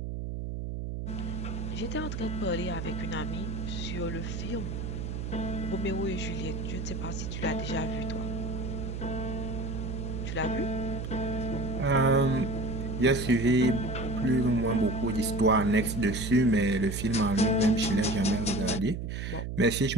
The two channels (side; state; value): right; noise; hum, 5 dB below the sound